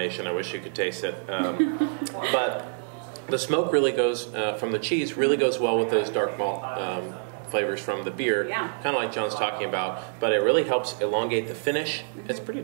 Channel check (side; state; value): left; silent; 60 dB below the other